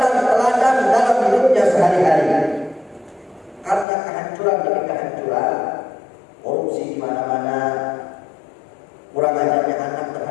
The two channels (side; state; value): right; drops out; at 3.9 s